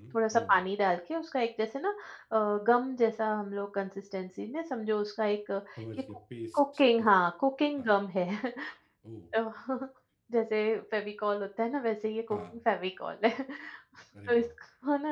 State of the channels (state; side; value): identical; both; correlation 1.00